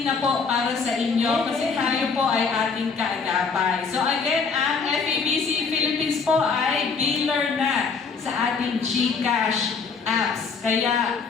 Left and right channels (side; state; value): right; quieter; 5.2 dB